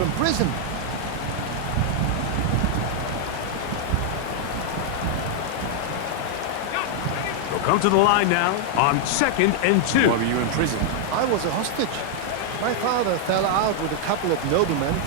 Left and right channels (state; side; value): different; both; correlation 0.00